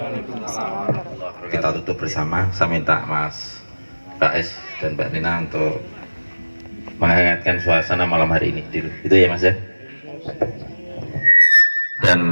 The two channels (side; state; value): both; inverted; correlation -1.00